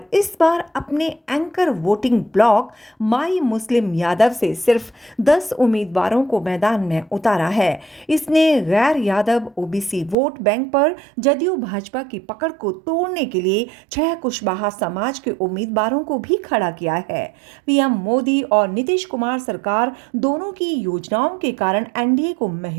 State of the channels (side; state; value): left; drops out; at 10.2 s